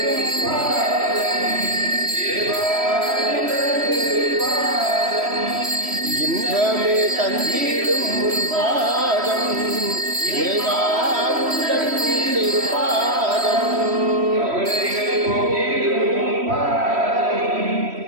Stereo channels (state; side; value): late; left; 3.1 ms